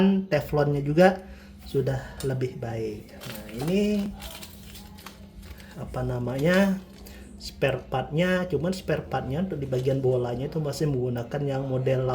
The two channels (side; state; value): both; identical; correlation 1.00